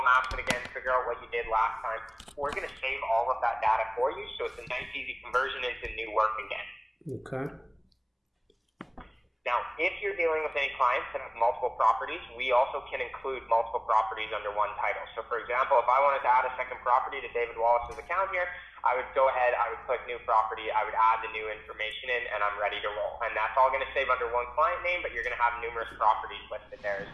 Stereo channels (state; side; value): identical; both; correlation 1.00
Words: Maps it again, figure out what you did last time, we're going to save all of that data for you, so it's a nice, easy conversion into new work again. Okay. Now, if you're dealing with any clients that have multiple properties, we also can include multiple properties under one title. So, for example, if I wanted to add a second property to David Wallace's account here, I would go ahead, I would click new property, I would add the new information in, and I'm ready to roll. And that's all going to save under one client name, but you're going to have numerous properties listed there, as